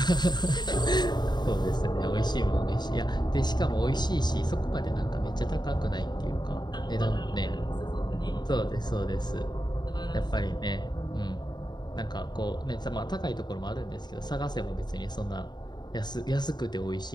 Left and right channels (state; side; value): late; right; 0.21 ms